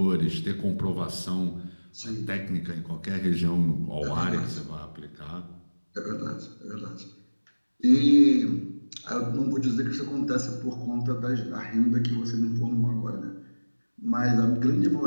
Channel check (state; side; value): inverted; both; correlation -1.00